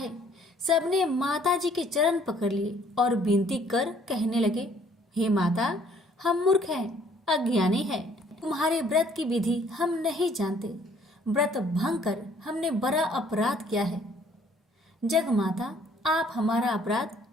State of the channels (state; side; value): normal; both; correlation 0.61